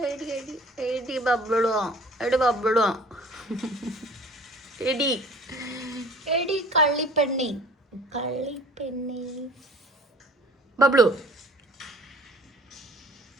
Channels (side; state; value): both; normal; correlation 0.49